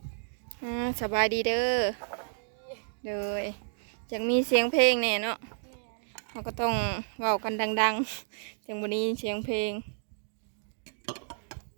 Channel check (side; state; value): left; silent; digital silence